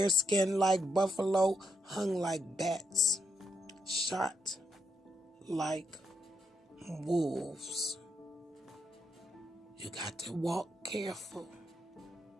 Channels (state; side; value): normal; both; correlation 0.79